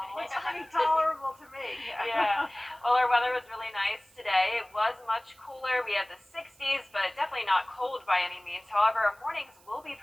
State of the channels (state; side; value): noise; right; hiss, 28 dB below the sound